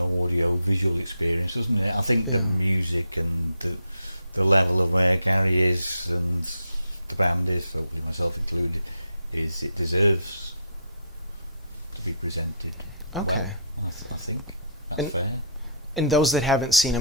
visual experience, doesn't it? I think the music and the level of where Gary is and the band is, hopefully myself included, is it deserves to be presented well. I think that's fair. And those that haven't seen, I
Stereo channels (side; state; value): both; inverted; correlation -0.63